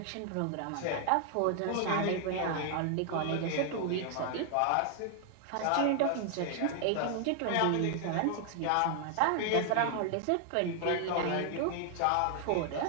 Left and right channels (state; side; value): different; both; correlation 0.00